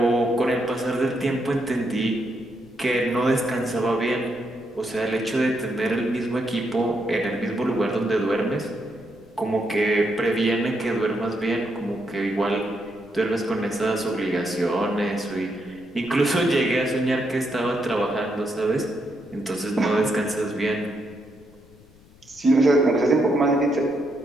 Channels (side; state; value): left; noise; rumble, 26 dB below the sound